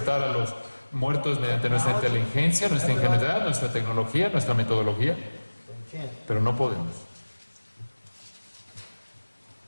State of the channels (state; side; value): inverted; both; correlation -1.00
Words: a los muertos mediante nuestra inteligencia, nuestra ingenuidad, nuestra tecnología, nuestra metodología, but we can't. pero no podemos.